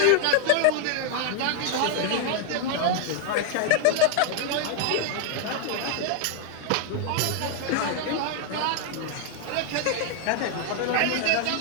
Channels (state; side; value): different; both; correlation 0.00